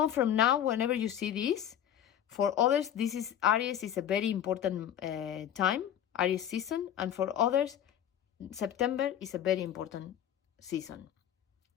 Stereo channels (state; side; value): quieter; right; 10.2 dB